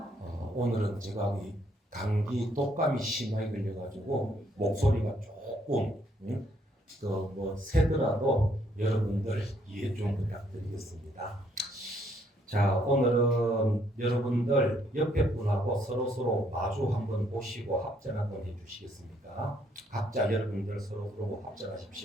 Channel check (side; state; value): both; normal; correlation 0.69